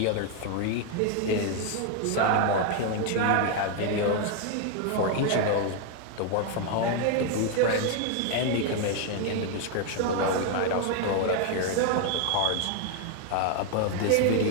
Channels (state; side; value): different; both; correlation 0.01